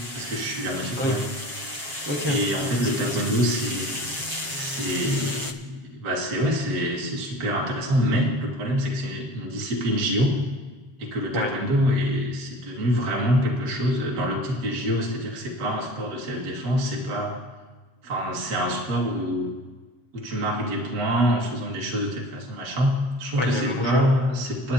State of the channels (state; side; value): late; left; 7.5 ms